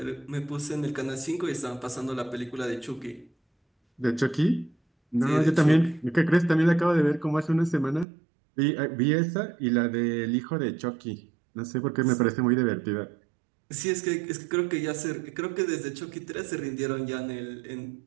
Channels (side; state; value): left; drops out; at 8.1 s